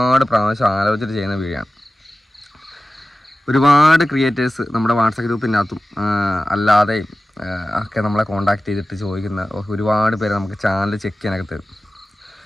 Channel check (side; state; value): both; normal; correlation 0.95